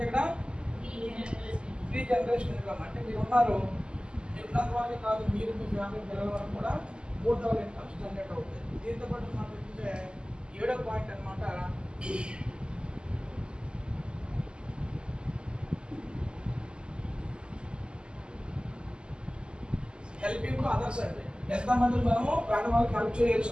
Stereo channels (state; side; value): late; left; 0.049 ms